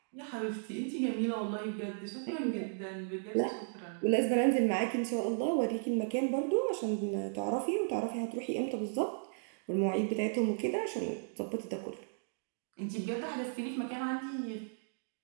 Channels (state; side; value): silent; left; digital silence